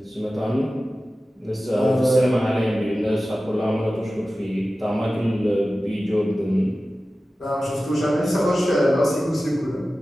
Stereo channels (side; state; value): both; normal; correlation 0.95